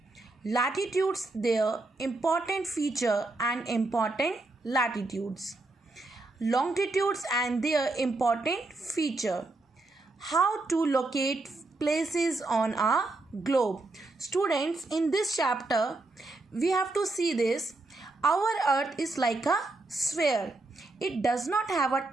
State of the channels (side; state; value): left; quieter; 3.1 dB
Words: Latitudes, their important feature and important latitudes. Longitudes and their important feature. How to locate places on a globe. Students, in this chapter we have to see this. Our earth is like a sphere. It does not have a